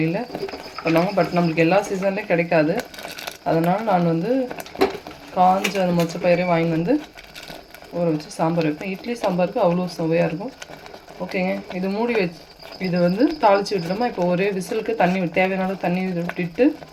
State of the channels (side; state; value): both; identical; correlation 1.00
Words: பண்ணுவாங்க. பட் நம்மளுக்கு எல்லா சீசன்லேயும் கிடைக்காது. அதனால் நான் வந்து காஞ்ச அந்த மொச்சப்பயிரை வாங்கி வந்து ஊற வச்சு சாம்பார் வைப்பேன். இட்லி சாம்பாருக்கு அவ்வளோ சுவையாக இருக்கும். ஓகேங்க, இது மூடி வச்சு இது வந்து தாளித்து விட்டுட்டோமா. இப்போ ஒரே விசிலுக்கு தேவையான தண்ணி விட்டுட்டு